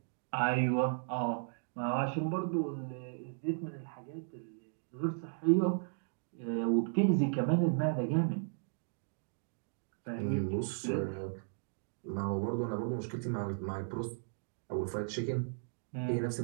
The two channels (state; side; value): silent; left; digital silence